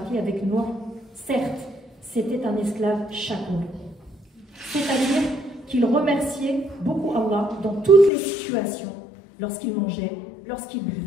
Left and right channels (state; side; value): drops out; right; at 8.1 s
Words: avec Noé, certes, c'était un esclave chakour. C'est-à-dire qu'il remerciait beaucoup Allah dans toutes les situations, lorsqu'il mangeait, lorsqu'il